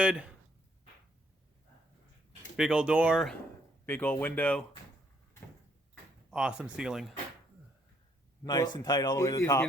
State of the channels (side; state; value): both; normal; correlation 0.68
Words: Big old door, big old window. Awesome ceiling. Nice and tight all the way to the It's top.